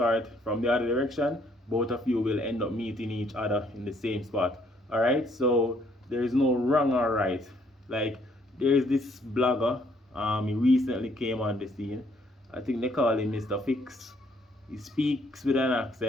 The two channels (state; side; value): normal; both; correlation 0.67